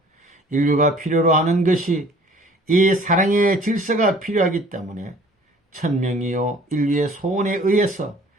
인류가 필요로 하는 것이 이 사랑의 질서가 필요하기 때문에 천명이요 인류의 소원에 의해서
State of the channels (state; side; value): normal; both; correlation 0.52